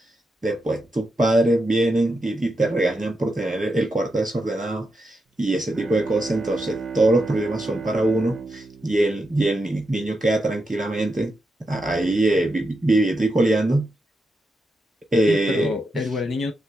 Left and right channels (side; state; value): both; normal; correlation 0.86